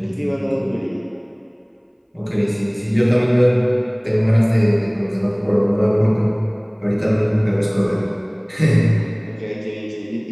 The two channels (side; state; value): both; identical; correlation 1.00